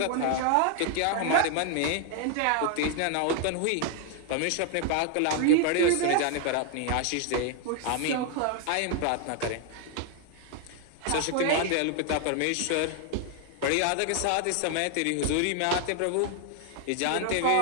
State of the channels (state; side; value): different; both; correlation 0.00